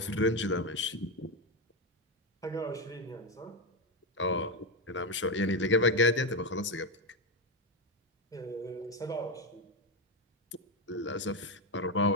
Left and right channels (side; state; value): both; normal; correlation 0.10